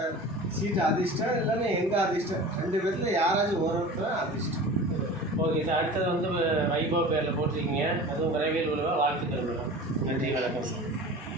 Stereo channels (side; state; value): both; normal; correlation 0.37